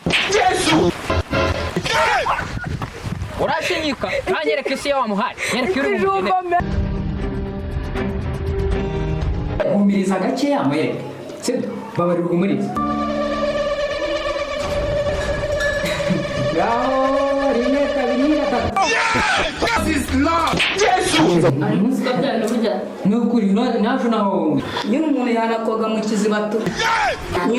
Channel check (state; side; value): identical; both; correlation 1.00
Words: Yesu urashinyika kanyereka isi yawe muhari nyereka uri umugene umiriza gake yamwereka sibyo babarira umuriza Gao rimwe kabiri gatatu This is love Yesu ari musika byane burya nukuri naje naho nyine umuntu yanakoga mu kizibato